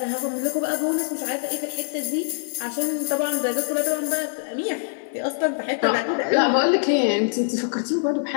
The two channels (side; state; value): right; silent; digital silence